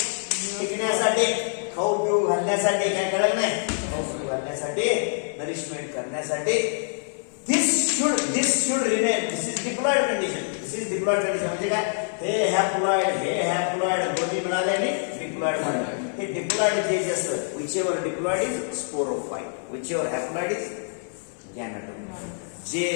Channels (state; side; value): silent; right; 61 dB below the other